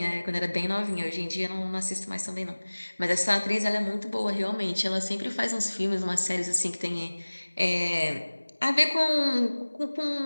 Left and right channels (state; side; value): inverted; both; correlation -1.00